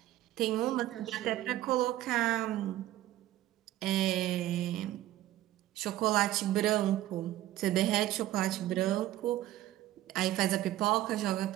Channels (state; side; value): quieter; left; 14.6 dB